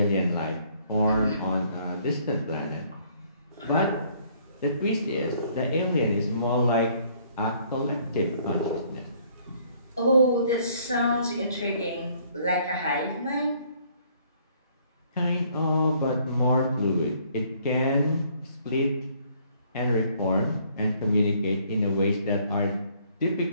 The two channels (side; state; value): both; inverted; correlation -0.63